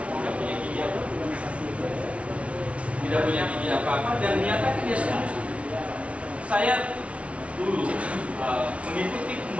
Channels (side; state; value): left; late; 0.063 ms